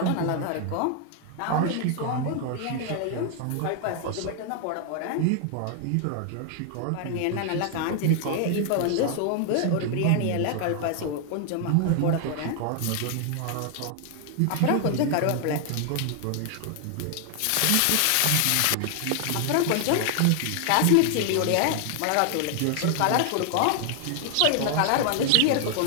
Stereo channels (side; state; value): both; different; correlation 0.00